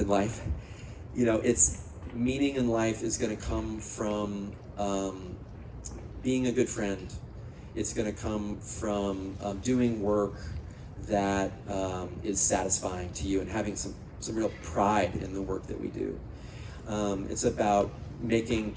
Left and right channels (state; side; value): identical; both; correlation 1.00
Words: life. It's meaning in life is going to come from being a good friend. it's going to come from doing work that is satisfying to you and having some real pride in the work that we do. It's about making